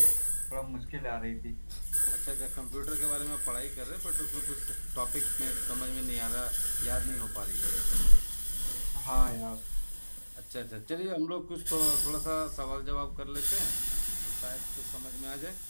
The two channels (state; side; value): inverted; both; correlation -1.00